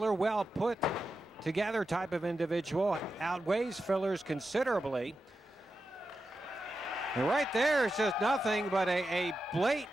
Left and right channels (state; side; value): normal; both; correlation 0.90